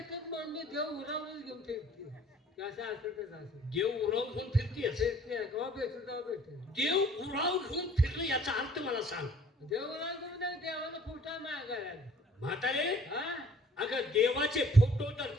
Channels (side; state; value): both; normal; correlation 0.55